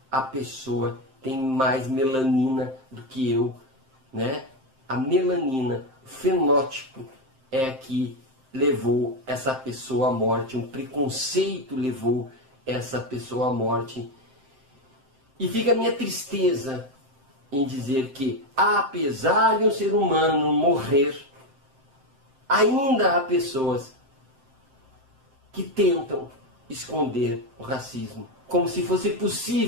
a pessoa tem mais melanina do que eu, né? A melanina, o fenótipo é que levou essa pessoa à morte, um preconceito levou essa pessoa à morte. E fica a minha tristeza em dizer que, apesar de um ser humano morrer, ainda há pessoas que tentam esconder o racismo, como se fosse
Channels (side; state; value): left; late; 7.6 ms